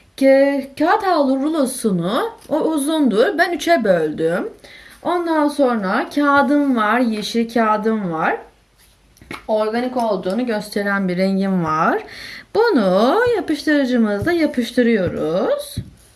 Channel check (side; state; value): both; identical; correlation 1.00